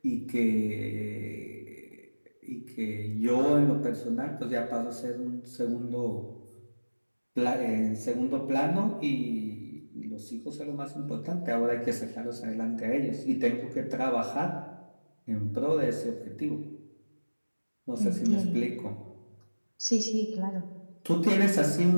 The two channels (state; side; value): inverted; both; correlation -1.00